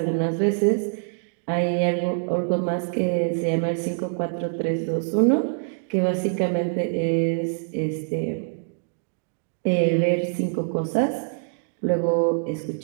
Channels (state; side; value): silent; left; digital silence